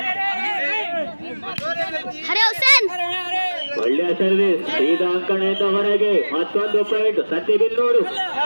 ಒಳ್ಳೆಯ ಸರ್ವಿಸ್. ಸೀದಾ ಅಂಕಣೆಯಿಂದ ಹೊರಗೆ. ಮತ್ತೊಂದು ಪಾಯಿಂಟ್ ಸಂತೆಬಿನ್ನೂರು.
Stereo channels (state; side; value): inverted; both; correlation -1.00